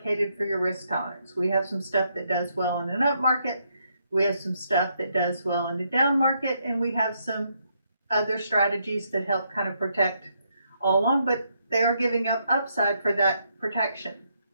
for your risk tolerance. We have some stuff that does well in an up market. We have some stuff that does well in a down market. And we have some other strategies that help kind of protect all along. But they are giving up upside for that protection.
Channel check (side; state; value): both; inverted; correlation -0.76